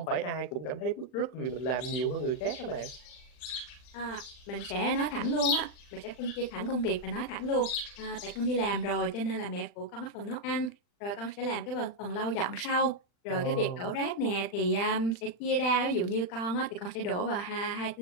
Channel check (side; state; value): right; late; 40 ms